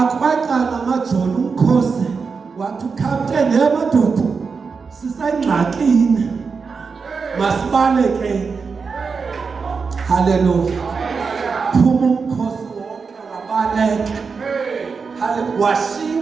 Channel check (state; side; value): quieter; left; 5.1 dB